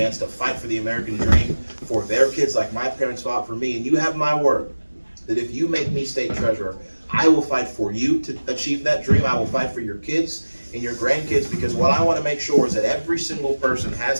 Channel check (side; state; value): both; inverted; correlation -1.00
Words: to fight for the American dream for their kids like my parents fought for me. And you have my word that if you make me state treasurer, I will fight for you to achieve that dream. I will fight for your kids and your grandkids, because what I want to make sure is that every single person